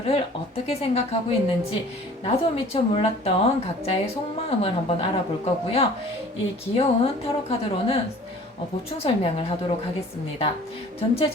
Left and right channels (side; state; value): both; normal; correlation 0.48